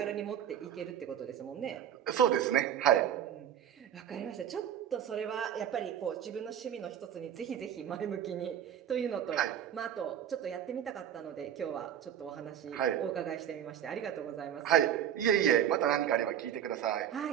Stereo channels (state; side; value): quieter; left; 9.8 dB